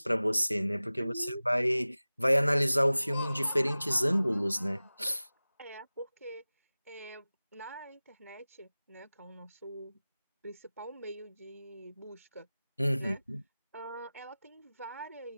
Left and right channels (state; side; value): inverted; both; correlation -0.97